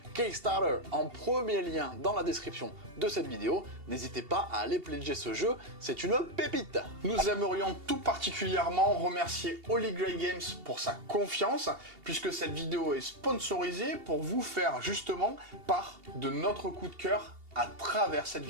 Kickstarter en premier lien dans la description de cette vidéo. N'hésitez pas à aller pledger ce jeu, c'est une pépite. Nous aimerions tout particulièrement remercier Holy Grail Games pour sa confiance, puisque cette vidéo est sponsorisée pour vous faire justement part de notre coup de cœur à travers cette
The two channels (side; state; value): left; late; 2.8 ms